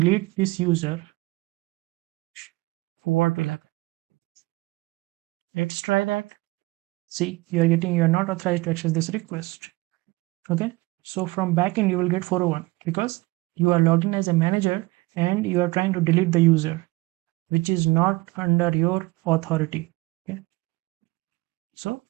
this user, let's try that. See, you are not authorized to access this request. Okay, so from backend you will get 401 because you are logged in as a manager and you are trying to delete the user, which is not under your authority. Okay, so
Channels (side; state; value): left; quieter; 21.7 dB